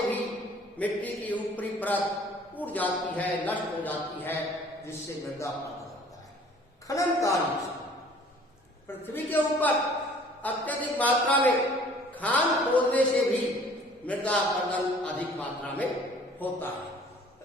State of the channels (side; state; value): both; normal; correlation 0.52